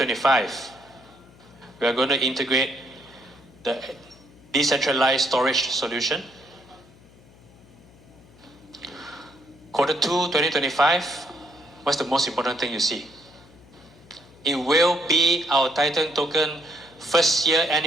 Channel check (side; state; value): left; noise; hum, 25 dB below the sound